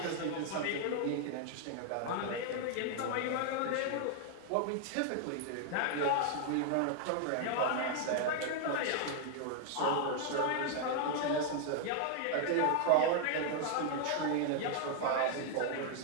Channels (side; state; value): both; different; correlation 0.00